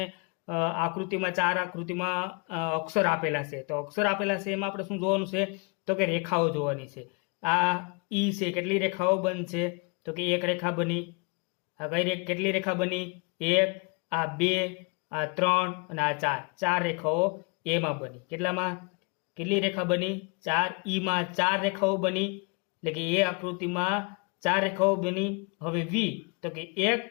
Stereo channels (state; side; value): quieter; right; 33.3 dB